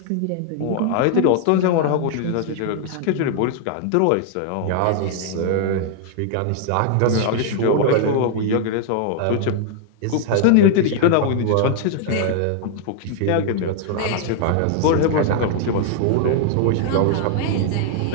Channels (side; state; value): both; different; correlation 0.00